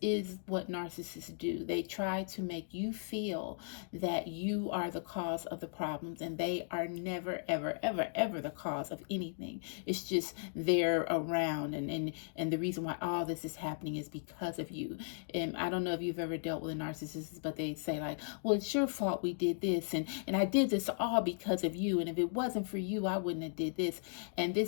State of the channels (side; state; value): right; silent; digital silence